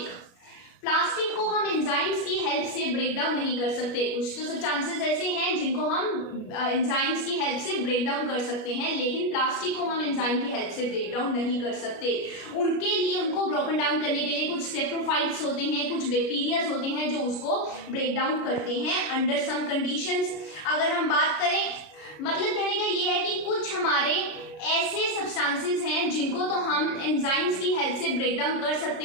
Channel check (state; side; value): late; right; 33 ms